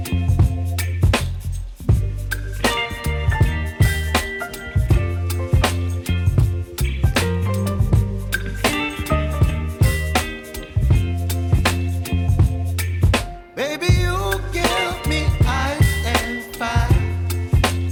Baby, you give me ice and fire.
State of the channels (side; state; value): both; identical; correlation 1.00